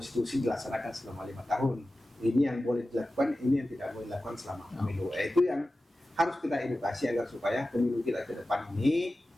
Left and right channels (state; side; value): normal; both; correlation 0.95